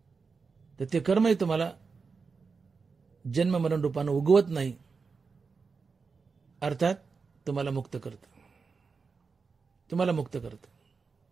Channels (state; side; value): quieter; left; 4.9 dB